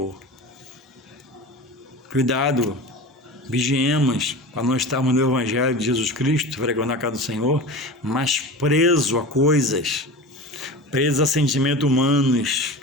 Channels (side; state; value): both; normal; correlation 0.32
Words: Cuidado, vigiemos para não estarmos no Evangelho de Jesus Cristo, frequentando a casa do Senhor, mas preso a coisas, preso a sentimentos humanos,